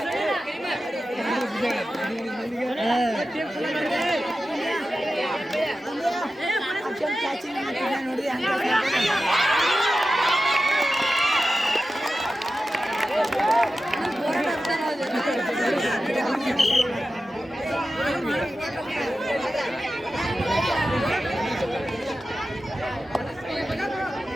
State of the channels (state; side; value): normal; both; correlation 0.93